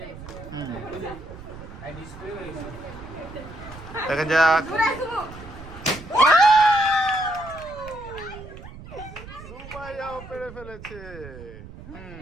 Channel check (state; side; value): noise; right; rumble, 14 dB below the sound